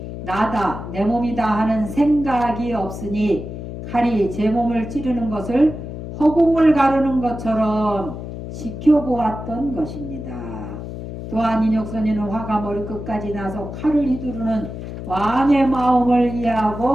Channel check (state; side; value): noise; left; hum, 9 dB below the sound